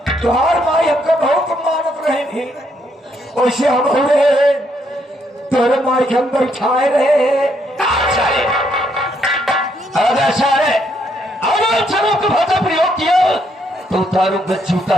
तुहार माई हमको बहुत मानत रहेंगी। वैसे हम हो रहे तोरे माई के हम बैठाए रहे। साले अगर साले अगर चलो को भाषा प्रयोग किया तो उतारूंगा जूता,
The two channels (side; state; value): both; normal; correlation 0.73